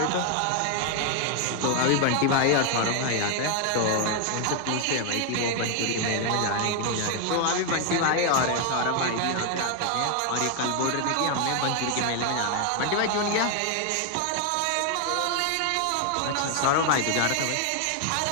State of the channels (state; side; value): different; both; correlation 0.00